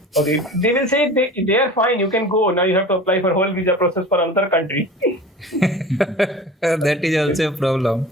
Okay, they will say they are fine. You can go now. You have to apply for whole visa process for another country. That is also a problem.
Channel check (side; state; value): both; normal; correlation 0.37